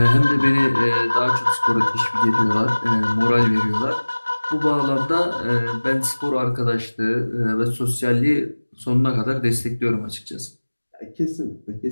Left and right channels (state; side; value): inverted; both; correlation -1.00